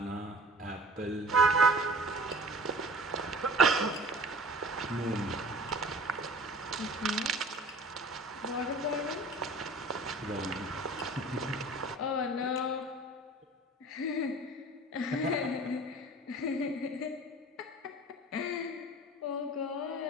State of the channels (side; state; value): both; normal; correlation 0.44